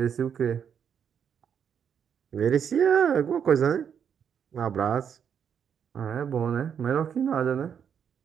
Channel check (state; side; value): quieter; left; 7.8 dB